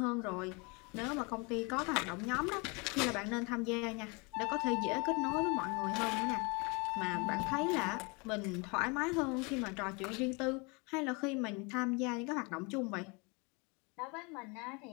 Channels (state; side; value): quieter; right; 29.9 dB